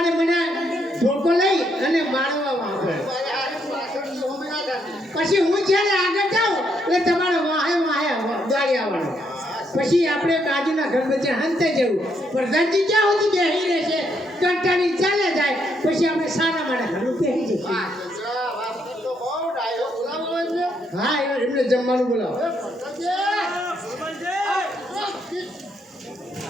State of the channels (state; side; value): normal; both; correlation 0.75